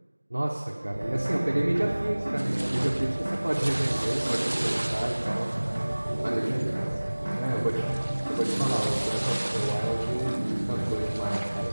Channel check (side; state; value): both; inverted; correlation -1.00